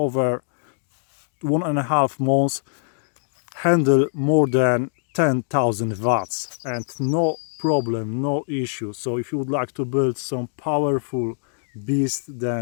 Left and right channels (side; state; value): right; silent; digital silence